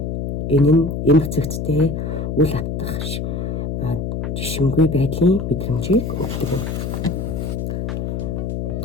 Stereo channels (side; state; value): left; noise; hum, 3 dB below the sound